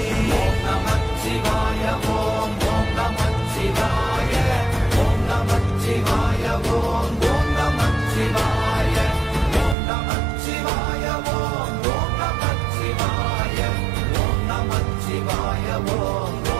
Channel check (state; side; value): drops out; left; at 9.8 s